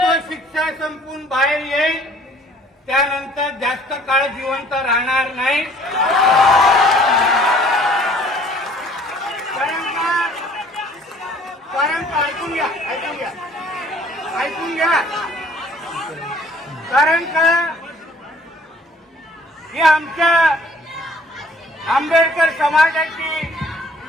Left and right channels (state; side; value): normal; both; correlation 0.56